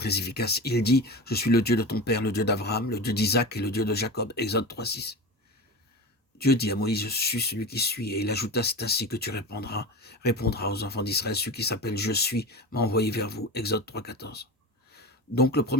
efficace. Il dit, je suis le Dieu de ton père, le Dieu d'Abraham, le Dieu d'Isaac et le Dieu de Jacob. Exode 3,6. Dieu dit à Moïse, je suis celui qui suis. Et il ajouta, c'est ainsi que tu répondras aux enfants d'Israël, celui qui s'appelle je suis m'a envoyé vers vous. Exode 3,14. Donc le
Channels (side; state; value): both; normal; correlation 0.28